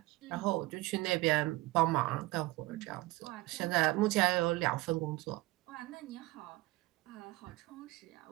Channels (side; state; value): left; quieter; 20.4 dB